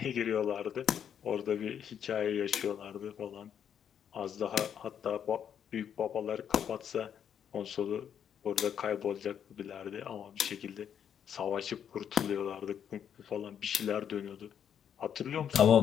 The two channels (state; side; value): quieter; right; 8.6 dB